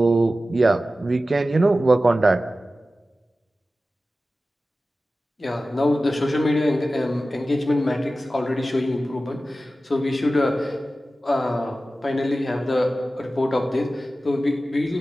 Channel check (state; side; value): normal; both; correlation 0.95